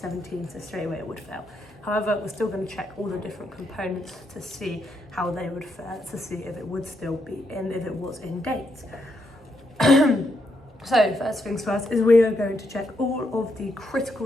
so straight away it would fail. However, we're still going to check all the different components to see how they would fare, to see if it would still be in, if it was in date. So first things first is we are going to check all of the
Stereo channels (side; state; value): both; normal; correlation 0.79